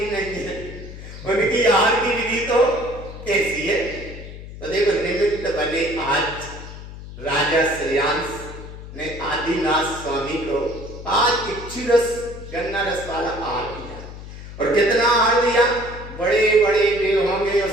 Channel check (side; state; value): left; noise; hum, 13 dB below the sound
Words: नहीं है, उनकी आहार की विधि तो कैसी है। तो देखो निमित्त बने आज राजा श्रेयांश ने आदिनाथ स्वामी को आज इच्छु रस, गन्ना रस वाला आहार दिया। और कितना आहार दिया? बड़े बड़े देव होंगे